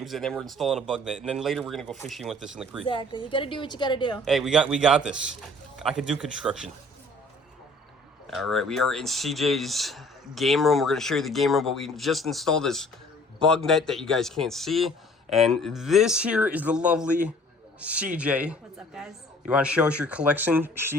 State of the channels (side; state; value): both; normal; correlation 0.53